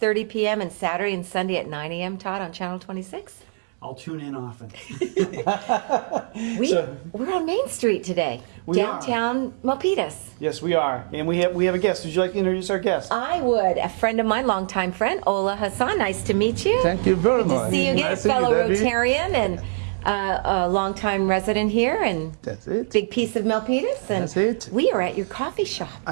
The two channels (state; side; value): silent; left; digital silence